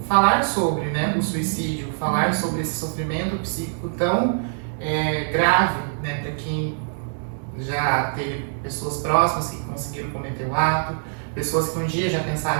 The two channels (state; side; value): silent; left; 63 dB below the other